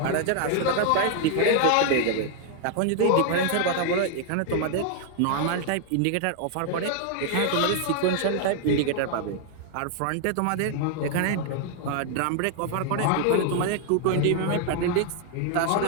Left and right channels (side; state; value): both; different; correlation 0.00